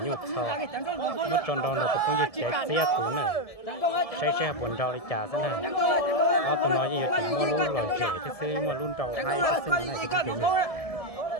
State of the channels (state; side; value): late; right; 1.7 ms